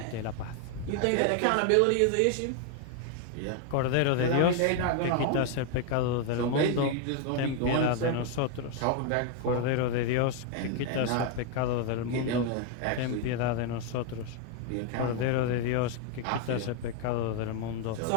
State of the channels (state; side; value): different; both; correlation 0.00